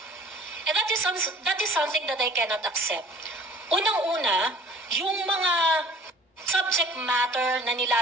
And that is something that I cannot accept. Unang-una, yung mga subject matter na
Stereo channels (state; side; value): normal; both; correlation 0.50